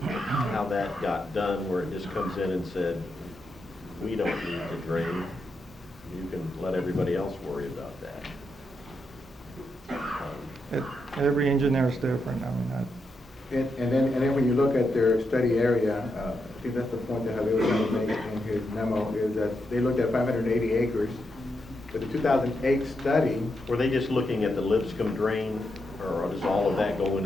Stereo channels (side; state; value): both; normal; correlation 0.84